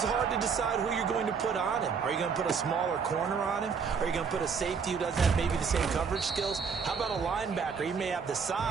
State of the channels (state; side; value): quieter; left; 5.9 dB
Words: hard to decide who you're going to put on him. Are you going to put a smaller corner on him? Are you going to put a safety who doesn't have maybe the same coverage skills? How about a linebacker? He may have the